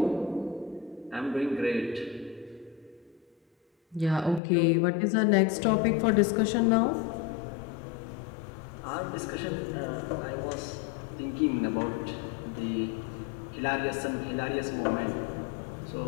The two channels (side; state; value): right; drops out; at 4.4 s